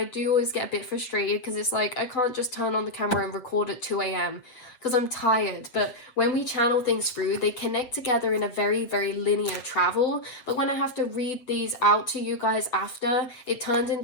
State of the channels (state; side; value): late; right; 7.9 ms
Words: do always get a bit frustrated, because it's like I can't just turn on the camera and record at 2 a.m. because I'm tired. But when we channel things through, they connect together in a very, very linear travel. But when I have to read these out to you guys after, it turns